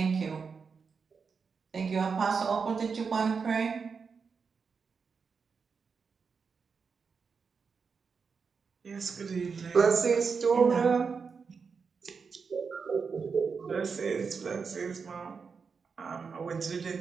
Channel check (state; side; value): quieter; left; 5.5 dB